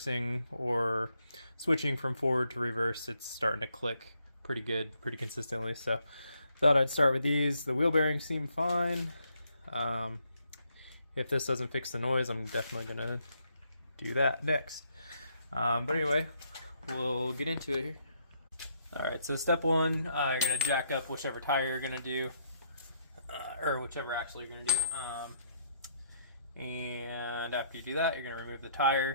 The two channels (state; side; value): inverted; both; correlation -0.73